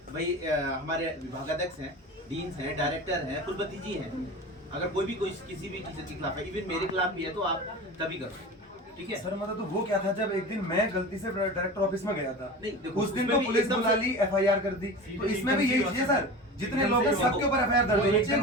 भाई हमारे विभागाध्यक्ष हैं, डीन्स हैं, डायरेक्टर हैं, कुलपति जी हैं, अगर कोई भी कोई किसी भी टीचर के खिलाफ है, इवन मेरे खिलाफ भी है, तो आप तभी करो, ठीक है सर। मतलब तो वो क्या था, जब एक दिन मैं गलती से डायरेक्टर ऑफिस में गया था, नहीं, देखो, उस दिन तो पुलिस बुला ली, एफआईआर कर दी। तो इसमें भी यही चीज है सर, जितने लोग हैं सबके ऊपर एफआईआर दर्ज होनी चाहिए।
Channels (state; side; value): normal; both; correlation 0.32